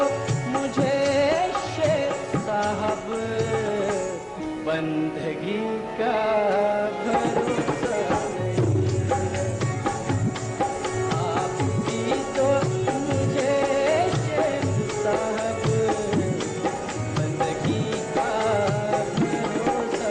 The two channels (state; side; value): identical; both; correlation 1.00